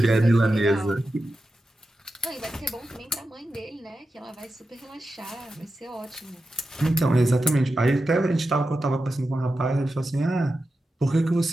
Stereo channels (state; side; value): normal; both; correlation 0.91